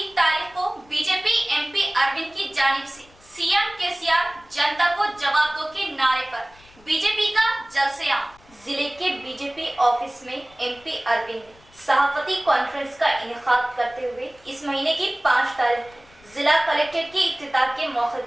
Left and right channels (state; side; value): noise; left; rumble, 27 dB below the sound